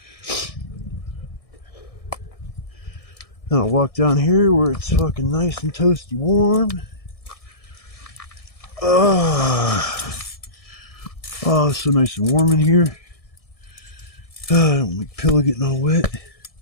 Now I'll walk down here where it's fucking nice and toasty warm. Oh, it's so nice and warm in here. I don't like pillow getting all wet.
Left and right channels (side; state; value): right; late; 1.6 ms